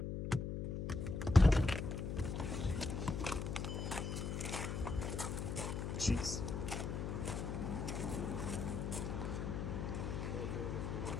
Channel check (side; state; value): left; noise; hum, 2 dB below the sound